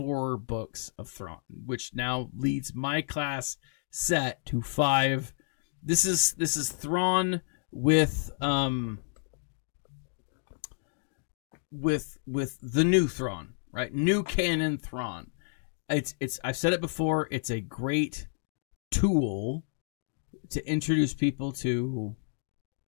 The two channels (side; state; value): right; silent; digital silence